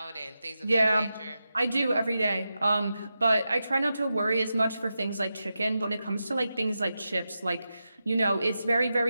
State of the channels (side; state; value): both; inverted; correlation -0.90